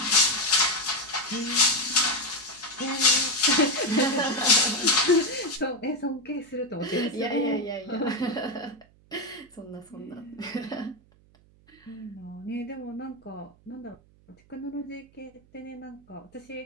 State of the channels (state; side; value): noise; right; hum, 29 dB below the sound